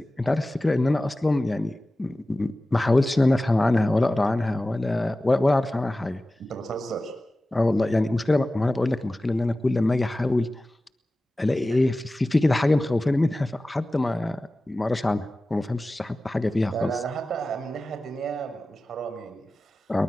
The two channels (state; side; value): normal; both; correlation 0.96